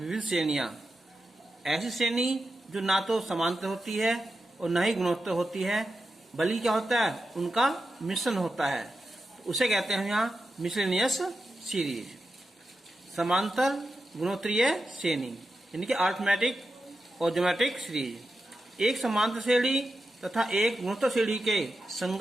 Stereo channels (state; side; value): normal; both; correlation 0.90